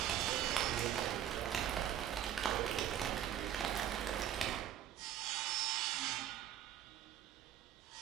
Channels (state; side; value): quieter; left; 10.6 dB